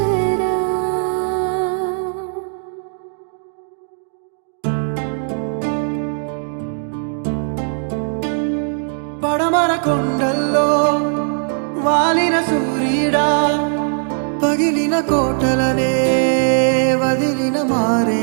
పడమర కొండల్లో వాలిన సూర్యుడా పగిలిన కోటలనే వదిలిన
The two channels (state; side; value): silent; left; digital silence